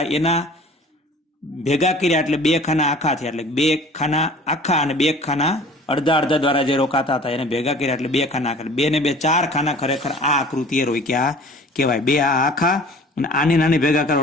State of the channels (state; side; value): normal; both; correlation 0.46